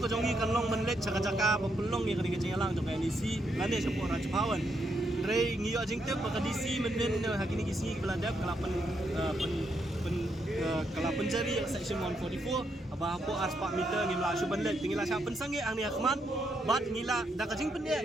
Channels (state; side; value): normal; both; correlation 0.78